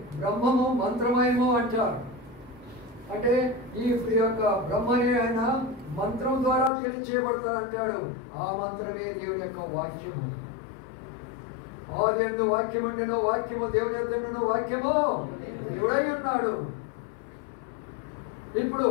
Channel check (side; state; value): right; drops out; at 6.7 s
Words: బ్రహ్మము మంత్రమయము అంటారు. అంటే ఈ యొక్క బ్రహ్మని ఆయన మంత్రం ద్వారా తెలియచేయబడతారు అంటాడు. ఆ మంత్రమే దేవుని యొక్క వాక్యము. ఆది యందు వాక్యం ఉండెను, వాక్యము దేవుని యొద్ద ఉండెను, వాక్యము దేవుడై ఉన్నాడు. ఇప్పుడు